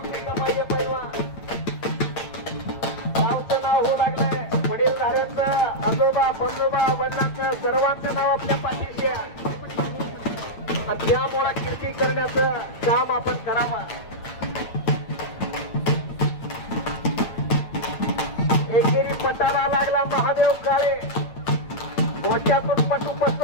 आजोबा बंजोबा वडिलांचं सर्वांचं नाव आपल्या पाठीशी आहे. आणि त्यामुळे कीर्ती करण्याचं काम आपण करावं. एकेरी पटाला लागला महादेव काळे. डोक्यातून पटू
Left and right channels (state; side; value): late; right; 8.9 ms